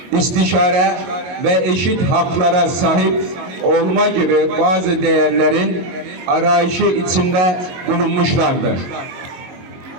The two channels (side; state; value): left; late; 22 ms